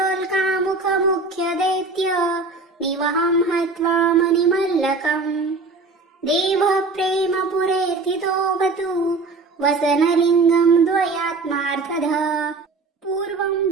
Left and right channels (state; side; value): quieter; left; 3.8 dB